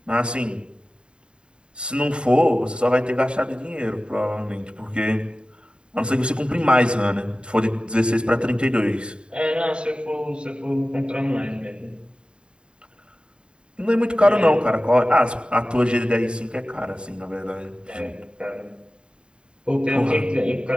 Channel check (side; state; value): left; late; 0.051 ms